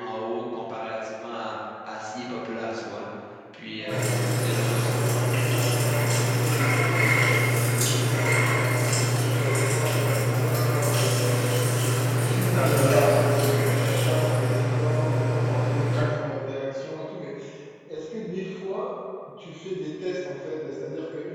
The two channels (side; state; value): both; identical; correlation 1.00